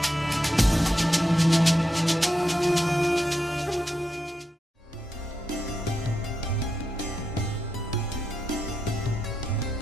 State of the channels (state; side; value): normal; both; correlation 0.85